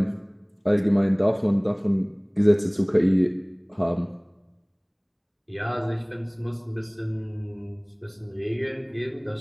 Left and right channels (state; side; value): identical; both; correlation 1.00